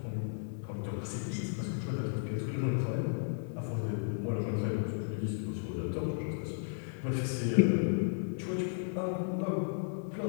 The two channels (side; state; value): right; silent; digital silence